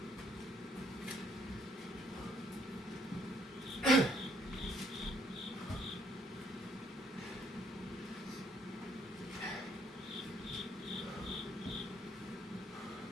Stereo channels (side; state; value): both; normal; correlation 0.67